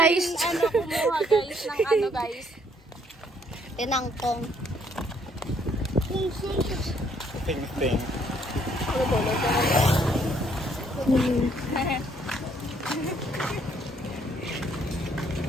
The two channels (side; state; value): both; normal; correlation 0.67